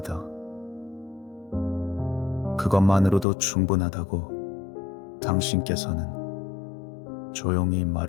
그것만으로도 충분하다고 당신께서는 조용히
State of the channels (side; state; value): right; drops out; at 3.2 s